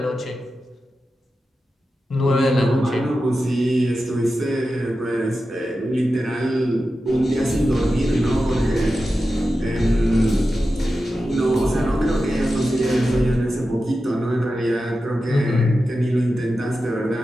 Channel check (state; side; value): normal; both; correlation 0.92